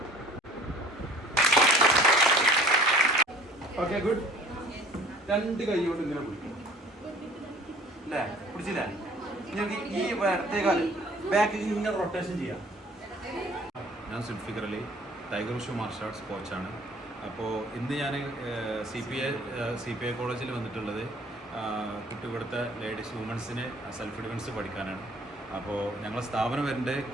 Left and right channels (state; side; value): normal; both; correlation 0.51